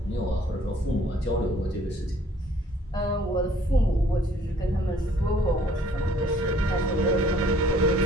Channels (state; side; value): normal; both; correlation 0.59